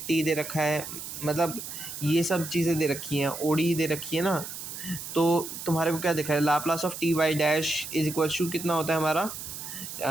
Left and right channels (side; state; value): right; noise; hiss, 9 dB below the sound